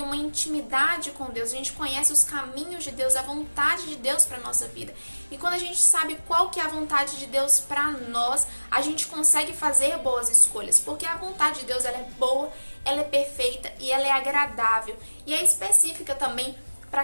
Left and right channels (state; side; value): inverted; both; correlation -1.00